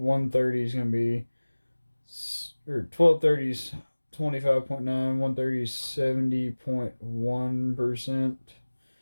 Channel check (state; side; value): inverted; both; correlation -1.00